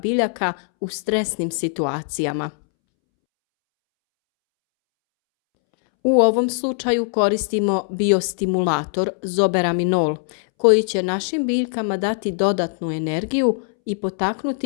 u stresnim situacijama. U ovom slučaju koristimo biostimulator zoberaminol, koji će našim biljkama dati dodatnu energiju i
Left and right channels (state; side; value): silent; right; 65 dB below the other